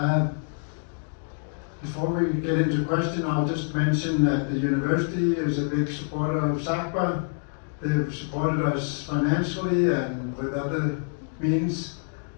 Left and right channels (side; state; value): right; silent; 61 dB below the other